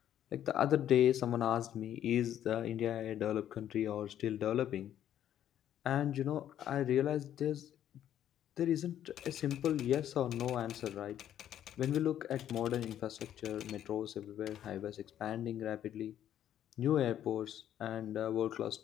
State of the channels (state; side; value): quieter; right; 10.9 dB